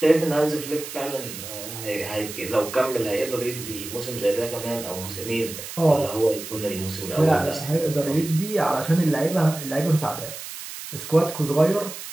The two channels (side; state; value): right; noise; hiss, 10 dB below the sound